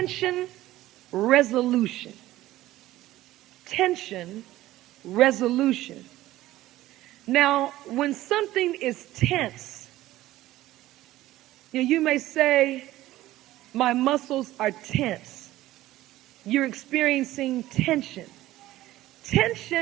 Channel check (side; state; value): left; quieter; 15.7 dB